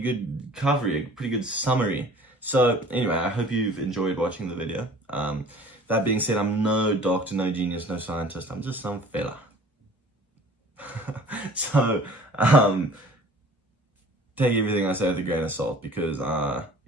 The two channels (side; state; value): both; normal; correlation 0.48